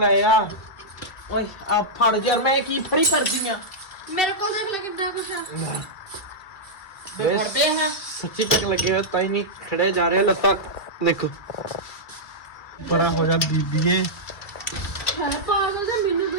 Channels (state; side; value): late; right; 2.3 ms